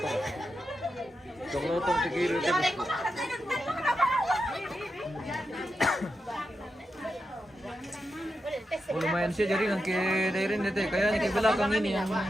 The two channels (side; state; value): both; normal; correlation 0.88